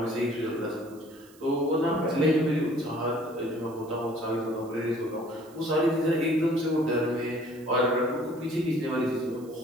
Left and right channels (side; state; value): right; noise; hiss, 26 dB below the sound